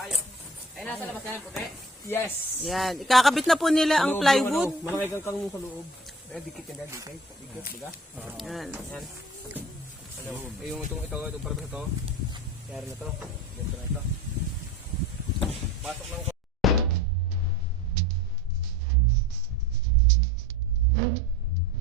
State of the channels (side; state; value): both; normal; correlation 0.39